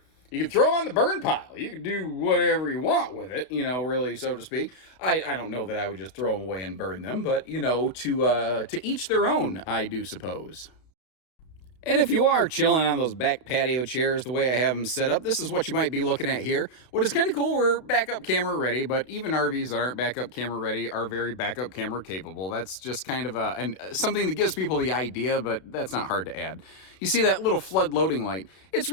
You can throw on the burn pile. You can do whatever you want with it, really, so to speak. I don't know that I would just throw them away and burn them, but, to each their own, I do suppose. And if you are chilling on those back patio chairs the way I have them set up, this is what you might be looking at here. What is kind of cool, we're backup camera ready, but even RVs that aren't backup camera ready are very backup camera capable. That's just kind of something that gives people the idea, but that's not hard to add. You see that little flood loading light? It's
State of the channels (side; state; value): right; late; 32 ms